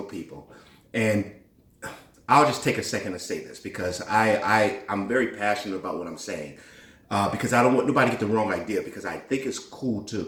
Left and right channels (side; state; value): both; identical; correlation 1.00